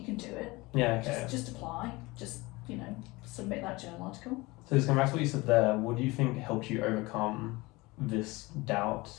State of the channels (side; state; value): right; quieter; 22.6 dB